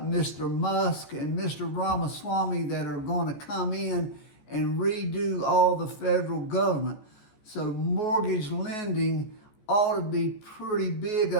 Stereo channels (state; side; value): late; right; 14 ms